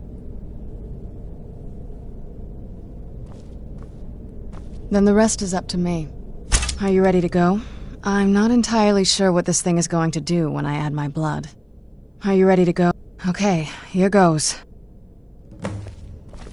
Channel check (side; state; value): both; identical; correlation 1.00